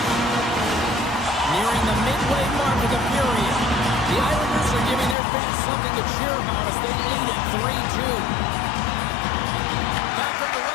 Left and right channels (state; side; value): drops out; right; at 5.2 s